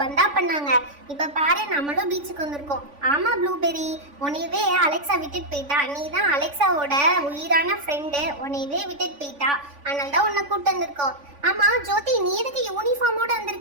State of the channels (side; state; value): left; late; 3.5 ms